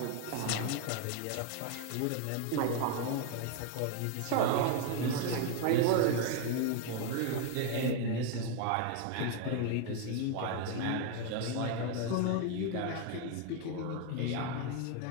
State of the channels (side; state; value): both; different; correlation 0.01